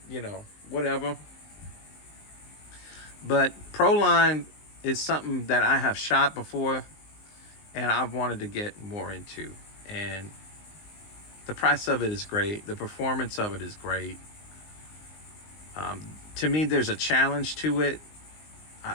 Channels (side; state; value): right; late; 19 ms